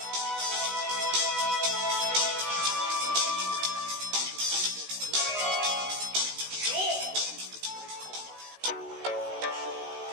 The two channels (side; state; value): left; late; 16 ms